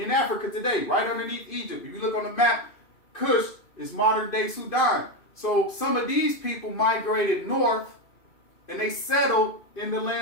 Africa today, right underneath Egypt. If you look on the map, Cush is modern day Sudan. So some of these people migrated north and they settled in the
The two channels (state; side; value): late; right; 2.5 ms